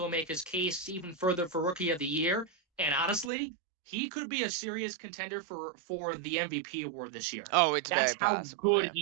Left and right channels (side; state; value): left; drops out; at 3.3 s